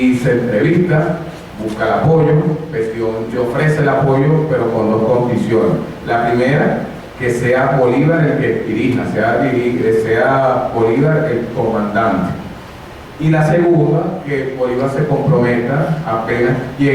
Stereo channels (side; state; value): both; identical; correlation 1.00